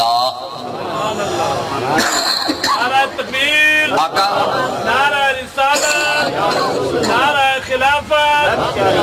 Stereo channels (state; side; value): identical; both; correlation 1.00